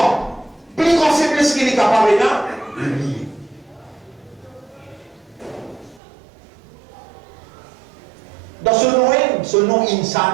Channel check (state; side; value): drops out; left; at 6.0 s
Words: plus grande faiblesse qu'il est capable de l'oublier. Dans ce nom